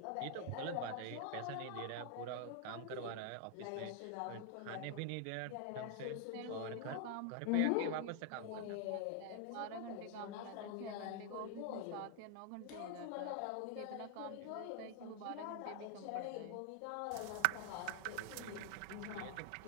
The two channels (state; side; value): different; both; correlation 0.00